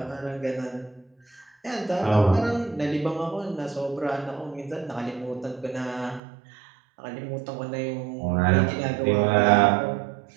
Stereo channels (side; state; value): left; drops out; at 6.2 s